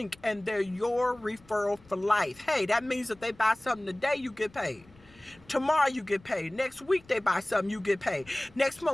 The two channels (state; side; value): noise; left; rumble, 26 dB below the sound